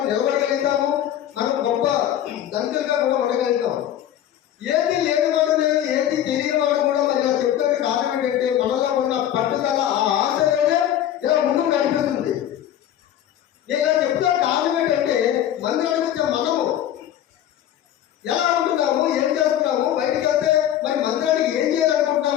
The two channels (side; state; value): right; quieter; 11.2 dB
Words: నిలబడగలుగుతాము, మనం గొప్ప దంతులుగా కూడా ఉండగలుగుతాం. ఏది లేనివాడు లేదు, ఏది తెలియని వాడు కూడా మరి ఇలా చెప్తున్న కారణం ఏంటంటే మనలో ఉన్న పట్టుదల, ఆ ఆశ అనేది ఇలా ముందుకు కనిపిస్తుంది. నేను ఇలా చెప్తాను కారణం ఏంటంటే మందిరానికి వచ్చే మనము ఎలా ఉంటున్నాము, ఏం చేస్తున్నాము, బయటికి వెళ్తే మరి మందిరానికి ఏం